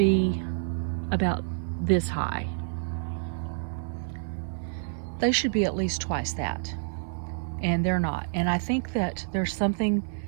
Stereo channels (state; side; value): silent; left; 59 dB below the other